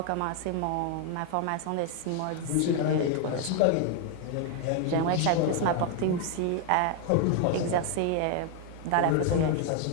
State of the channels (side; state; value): both; different; correlation 0.00